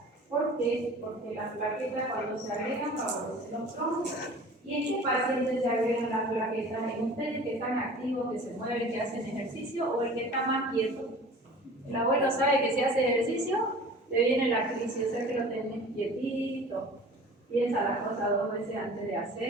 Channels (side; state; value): both; normal; correlation 0.43